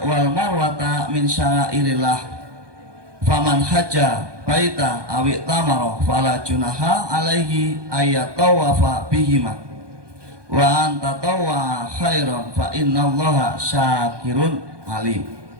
wal marwata min syairillah faman hajja baita awi tamaro fala junaha alaihi ayatawafa bihima wa anta tawwa khairan fa innallaha syakirun alim.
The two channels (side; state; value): left; late; 1.2 ms